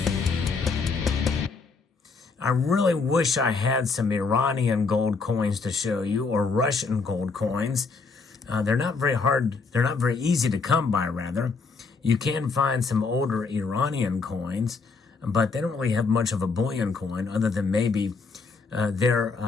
I really wish I had some Iranian gold coins to show you, or Russian gold coins. They're not very hard, they're not very easy to come by, rather. You can find some older Iranian coins, but they don't really have much of a bullion coin other than maybe their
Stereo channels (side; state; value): right; quieter; 4.5 dB